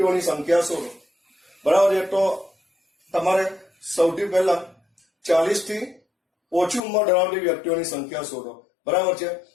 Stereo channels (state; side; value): drops out; right; at 6.8 s